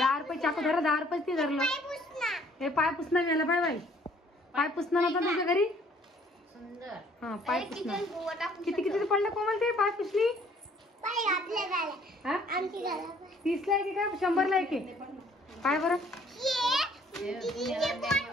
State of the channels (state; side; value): normal; both; correlation 0.60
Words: रुपये चाकू धरा. 10 रुपये ते धरलं. हे पाय पुसणं मिळालं. Bye bye. पाय पुसणं नव्हतं तुझ्या घरी? सुंदर. हा पाय पुसणं. किती किती पडलं कोमल ते पाय पुसली? 30 ला एक का 100 ला एक? काय बरं